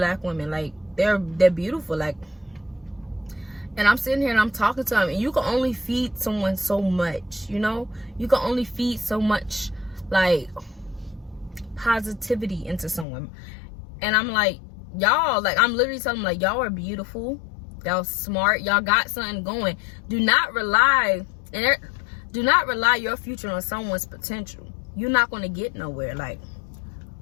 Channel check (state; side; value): drops out; right; at 13.1 s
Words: women. Like, they're beautiful. Like, and I'm sitting here and I'm talking to them, and you can only feed someone so much, you know? You can only feed so much, like, positivity into someone. And I'm like, y'all, like, I'm literally telling them, like, y'all are beautiful. Y'all smart. Y'all got something going. Do not rely your future on someone's potential. You're not going to get nowhere. Like,